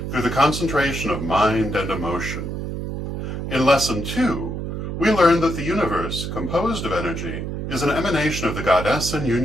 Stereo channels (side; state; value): right; noise; hum, 4 dB below the sound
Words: through the concentration of mind and emotion. In Lesson 2, we learned that the universe, composed of energy, is an emanation of the goddess in